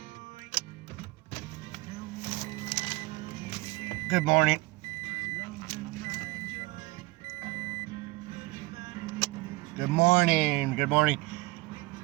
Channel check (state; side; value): quieter; left; 22.1 dB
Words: Good morning. Good morning. Good morning.